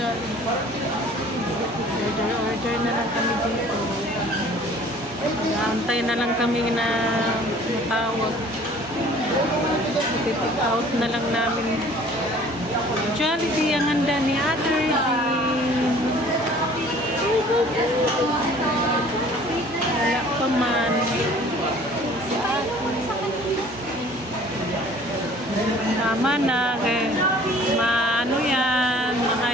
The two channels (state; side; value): normal; both; correlation 0.51